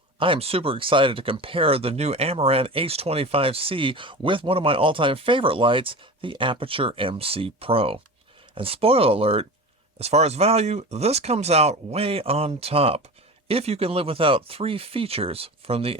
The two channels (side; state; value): both; normal; correlation 0.31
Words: I am super excited to compare the new Amaran H25C with one of my all-time favorite lights, the Aputure MC Pro. And spoiler alert, as far as value, this comes out way on top, if you can live without three features from the